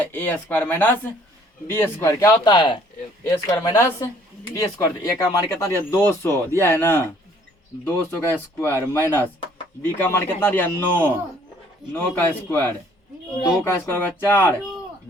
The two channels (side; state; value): both; normal; correlation 0.60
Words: A square minus B square. क्या होता है A square minus B square. A का मान कितना दिया 200 दिया है ना, 200 का स्क्वायर माइनस बी का मान कितना दिया 9 का स्क्वायर। 2 का स्क्वायर होगा 4,